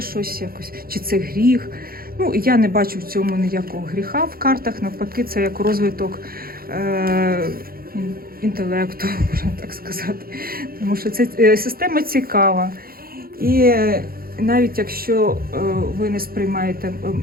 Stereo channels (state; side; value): late; left; 0.43 ms